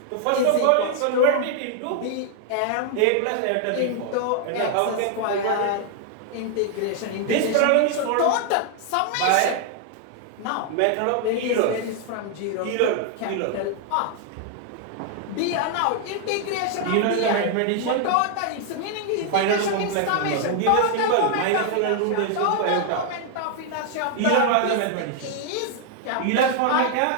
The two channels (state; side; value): different; both; correlation 0.00